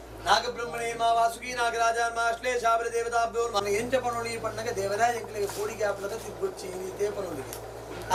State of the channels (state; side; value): identical; both; correlation 1.00